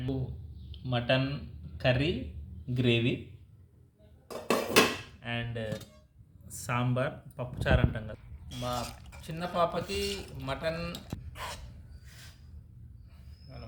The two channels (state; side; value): identical; both; correlation 1.00